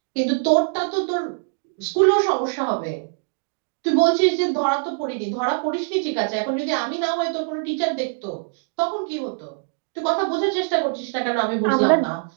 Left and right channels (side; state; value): left; silent; digital silence